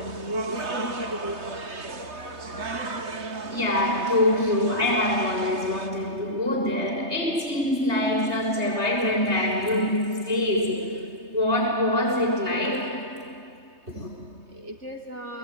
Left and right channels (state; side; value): late; left; 3.2 ms